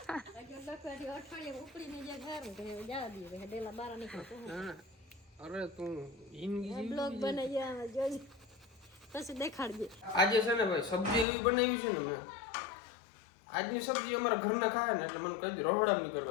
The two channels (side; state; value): right; drops out; at 11.2 s